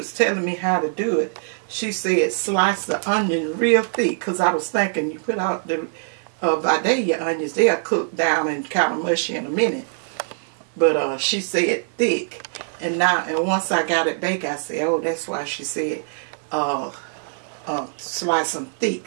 telling me how to do it, she said slice the onion real thick. Because I was thinking you put out the Vidalia onions, they'll cook down and kind of mushy in a minute. But she said thick. And once I got it baked, I said, oh, that's why she said slice them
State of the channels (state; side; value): silent; left; 64 dB below the other